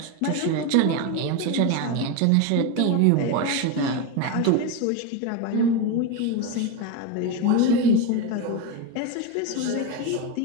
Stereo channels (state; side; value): different; both; correlation 0.03